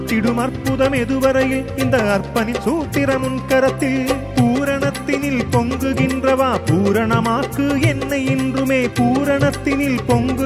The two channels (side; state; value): both; identical; correlation 1.00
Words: அற்புதம் எதுவரையில் இந்த அர்ப்பணி சூத்திரம் உன் கரத்தில் பூரணத்தினில் பொங்குகின்றவா பூரணமாக்கு என்னை இன்றுமே பூரணத்தினில்